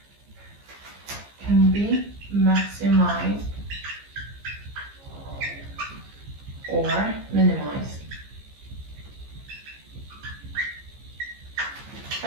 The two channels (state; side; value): late; left; 15 ms